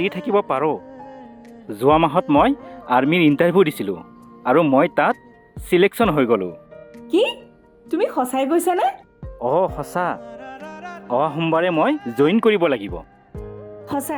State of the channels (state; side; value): identical; both; correlation 1.00